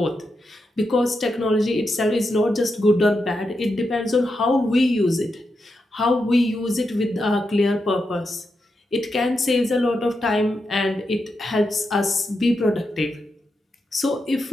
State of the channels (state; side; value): normal; both; correlation 0.86